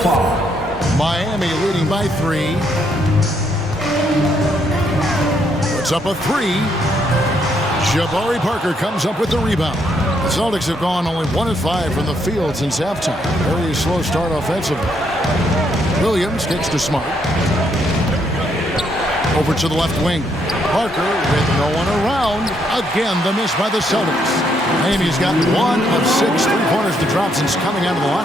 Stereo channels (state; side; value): normal; both; correlation 0.73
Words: Miami leading by 3. Puts up a 3. Jabari Parker comes up with the rebound. The Celtics have gone only 1 of 5 from the field since halftime. Very slow start offensively. Williams gets to Smart. Over to the left wing. Parker with no one around. Again, the miss by the Celtics. Miami's got 1 of 6 three-pointers to drop since coming out of the